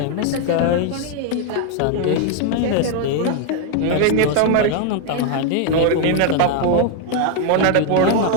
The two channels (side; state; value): both; different; correlation 0.01